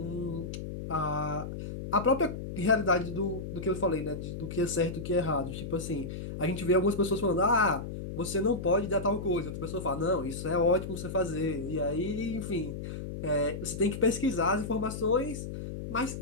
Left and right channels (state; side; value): noise; left; hum, 7 dB below the sound